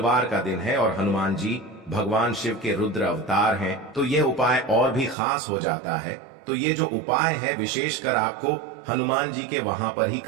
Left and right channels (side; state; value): left; drops out; at 5.2 s